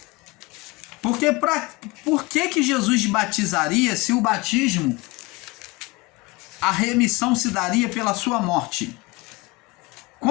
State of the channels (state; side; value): quieter; right; 24.3 dB